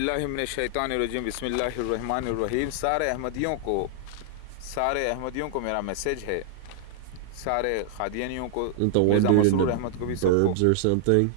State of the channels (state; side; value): different; both; correlation -0.01